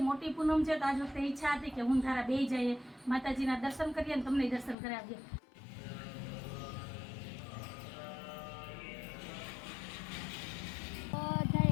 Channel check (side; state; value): right; drops out; at 4.8 s